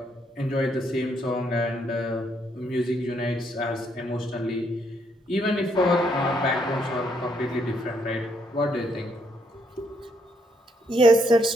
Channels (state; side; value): normal; both; correlation 0.73